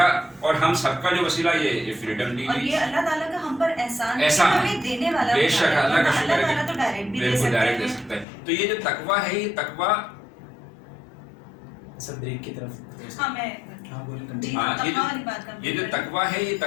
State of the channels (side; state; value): right; drops out; at 8.2 s